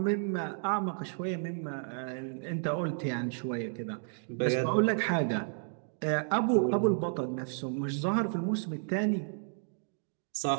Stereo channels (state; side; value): silent; left; 56 dB below the other